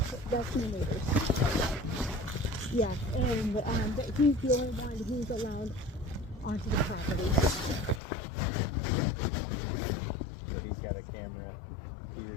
that's my neighbor's. Yeah, and but he's the only one who's allowed onto the property. So he's got a camera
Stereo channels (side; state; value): right; drops out; at 8.0 s